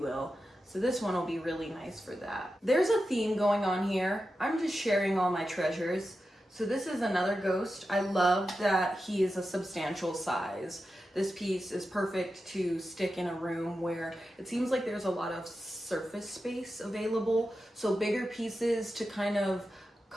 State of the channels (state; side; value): normal; both; correlation 0.91